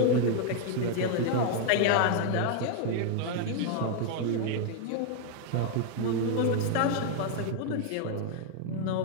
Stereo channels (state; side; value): different; both; correlation 0.00